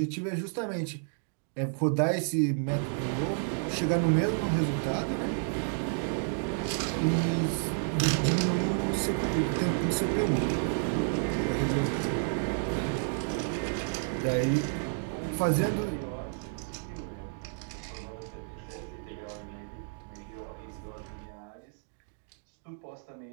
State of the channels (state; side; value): silent; left; digital silence